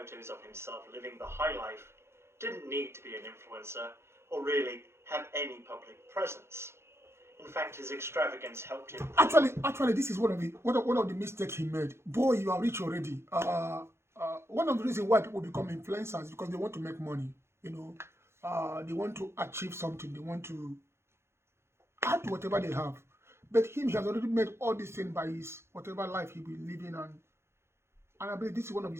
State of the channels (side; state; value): left; late; 0.12 ms